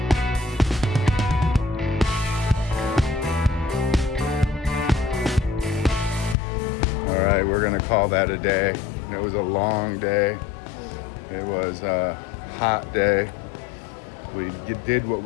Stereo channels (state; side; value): drops out; right; at 6.4 s